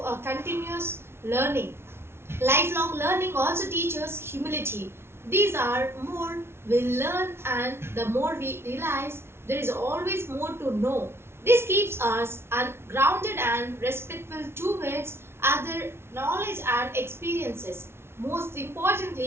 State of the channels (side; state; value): left; late; 0.12 ms